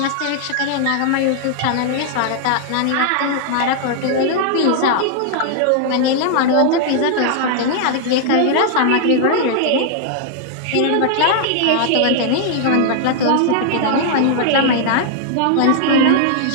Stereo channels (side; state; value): both; different; correlation 0.00